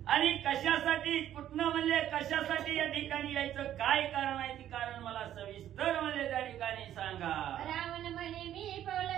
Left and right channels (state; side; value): quieter; left; 11.4 dB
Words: आणि कशासाठी कुठनं म्हणले कशासाठी या ठिकाणी यायचं काय कारण आहे ते कारण मला सविस्तर म्हणले त्या ठिकाणी सांगा. रावण म्हणे मी